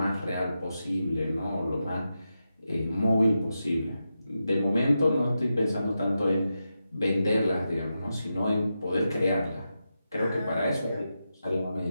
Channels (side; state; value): both; inverted; correlation -0.89